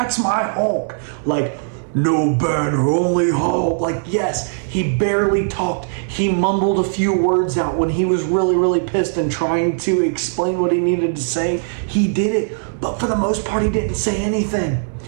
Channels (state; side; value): silent; left; 66 dB below the other